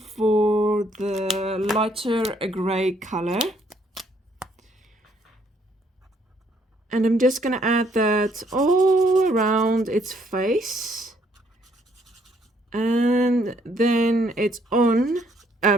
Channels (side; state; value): both; normal; correlation 0.68